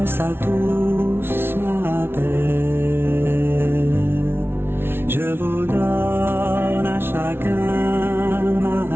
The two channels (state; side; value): late; left; 0.11 ms